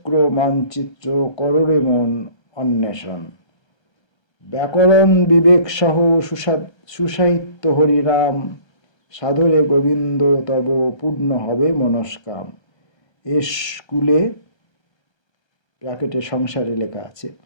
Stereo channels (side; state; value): right; late; 1.3 ms